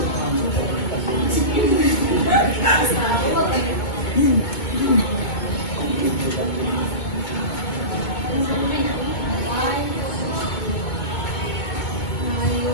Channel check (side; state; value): right; late; 2.2 ms